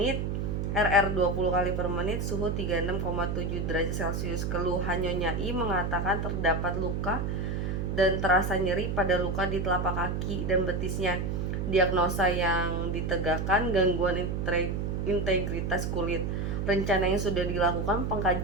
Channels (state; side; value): noise; right; hum, 1 dB below the sound